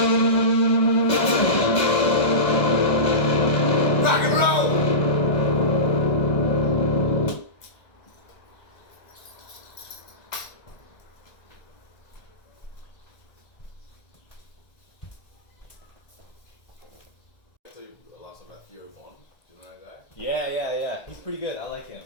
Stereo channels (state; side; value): late; right; 1.9 ms